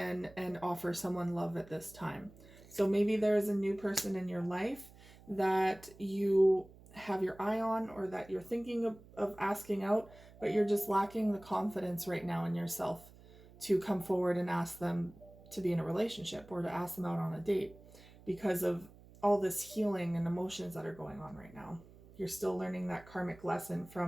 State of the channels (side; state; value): right; noise; hum, 22 dB below the sound